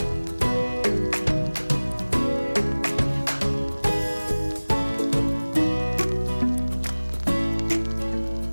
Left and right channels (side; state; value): both; inverted; correlation -1.00